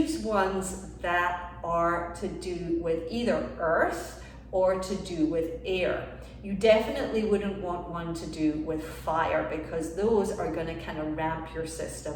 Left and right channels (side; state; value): both; identical; correlation 1.00